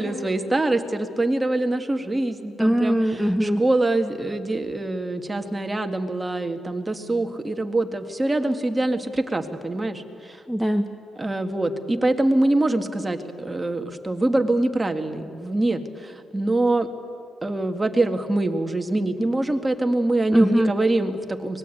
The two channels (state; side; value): normal; both; correlation 0.96